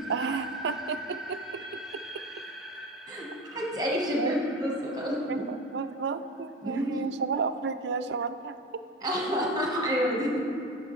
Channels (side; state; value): both; normal; correlation 0.28